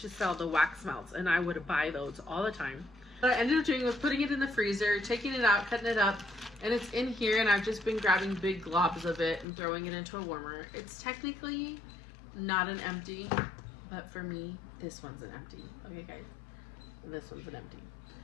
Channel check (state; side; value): drops out; right; at 9.5 s